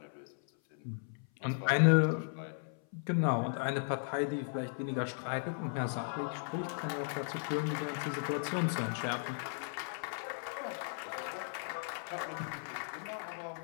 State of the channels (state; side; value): silent; right; 54 dB below the other